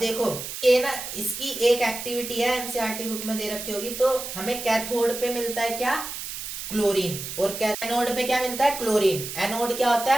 ये ना, इसकी एक एक्टिविटी है, एनसीईआरटी बुक में दे रखी होगी। तो हमें कैथोड पे मिलता है क्या? क्लोरीन। और एनोड पे क्या मिलता है? क्लोरीन। एनोड क्या होता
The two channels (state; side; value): noise; right; hiss, 7 dB below the sound